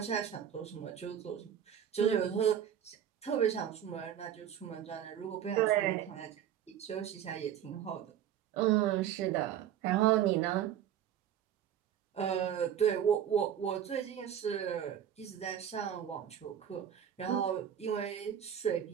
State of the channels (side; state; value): left; quieter; 9.7 dB